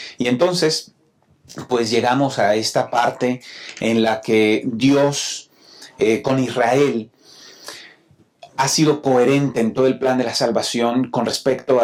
Y entonces, pues llegamos a esta parte en la que Dios con Israel ha sido coherente en todo el plan de la salvación con respecto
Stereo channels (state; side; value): identical; both; correlation 1.00